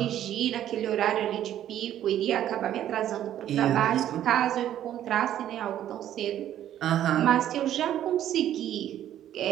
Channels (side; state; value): left; quieter; 11.5 dB